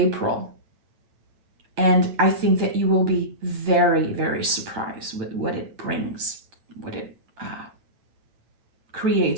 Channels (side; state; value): left; late; 9.0 ms